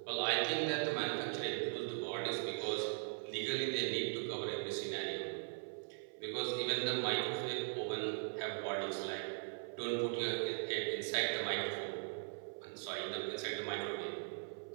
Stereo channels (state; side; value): silent; left; 51 dB below the other